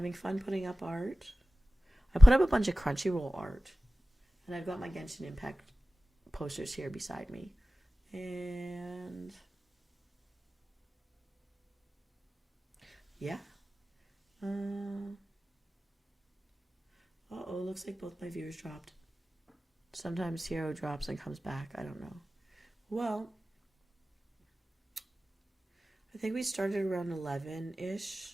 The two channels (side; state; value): both; normal; correlation 0.96